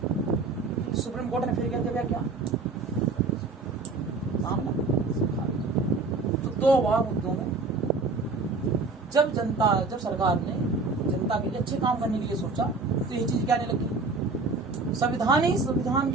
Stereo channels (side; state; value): left; quieter; 3.9 dB